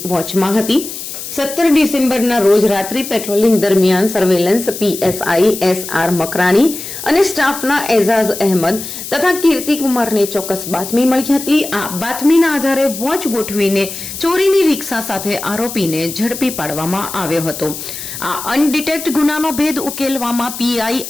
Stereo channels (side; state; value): left; noise; hiss, 9 dB below the sound